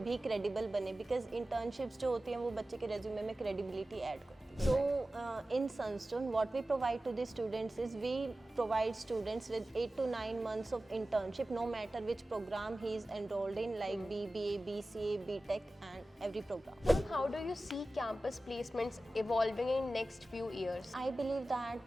क्रेडिबल बने, बिकॉज इंटर्नशिप्स जो होती हैं वो बच्चे के रेज्यूमे में क्रेडिबिलिटी ऐड करती है. So in Sunstone, what we provide to the students is we provide students with 8 to 9 months of internship, no matter which program he is enrolled in, like BBA, BCA, BTech, and every program. Ma'am, how do you see campus placements evolving in next few years? I believe that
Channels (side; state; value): both; normal; correlation 0.95